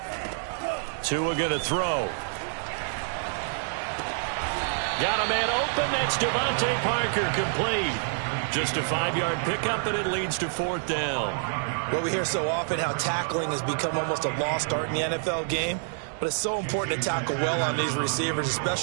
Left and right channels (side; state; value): left; silent; 60 dB below the other